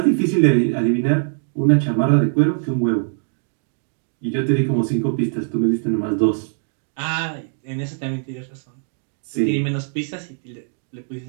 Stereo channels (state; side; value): silent; left; digital silence